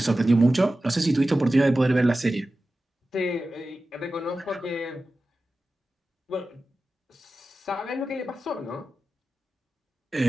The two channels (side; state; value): both; normal; correlation 0.94